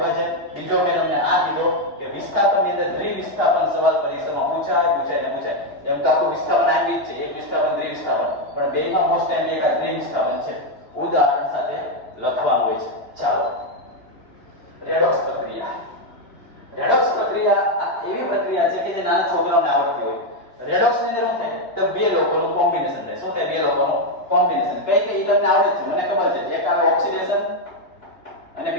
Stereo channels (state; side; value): late; right; 2.9 ms